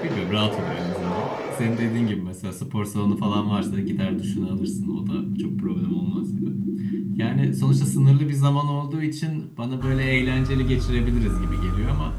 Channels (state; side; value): identical; both; correlation 1.00